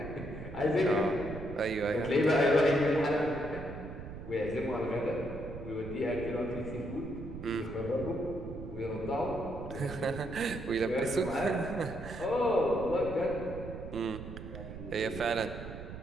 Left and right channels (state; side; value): noise; right; rumble, 10 dB below the sound